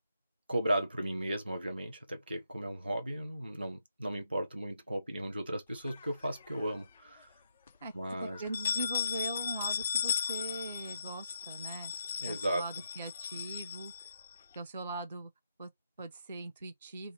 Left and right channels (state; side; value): inverted; both; correlation -0.81